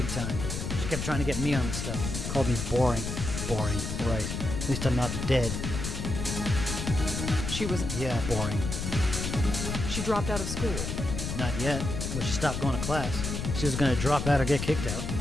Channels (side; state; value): left; noise; rumble, 4 dB below the sound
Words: time. She kept trying to get me on the stuff. Called me boring. Boring, right. At least I'm not dead. She was... Yeah, boring. She dropped out of school. Not yet, but she stopped going to class. She was going to drop out or get kicked out.